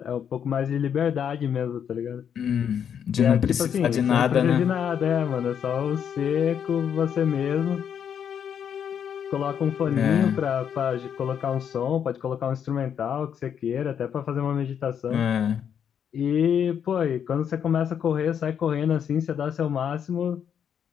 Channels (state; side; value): quieter; right; 8.3 dB